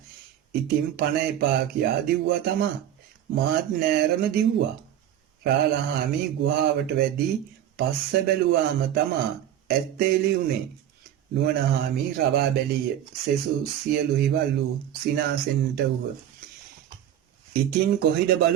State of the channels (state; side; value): quieter; left; 11.0 dB